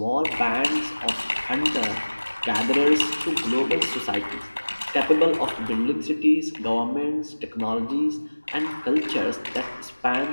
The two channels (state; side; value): inverted; both; correlation -1.00